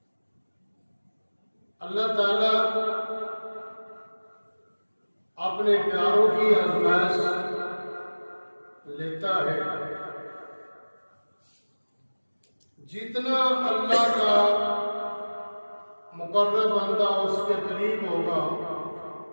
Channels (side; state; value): both; inverted; correlation -1.00